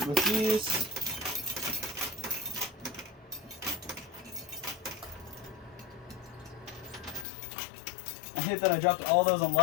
these. I hate that I dropped all those on the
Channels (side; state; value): right; drops out; at 7.2 s